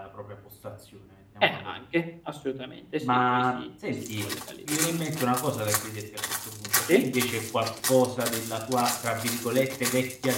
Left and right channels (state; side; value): identical; both; correlation 1.00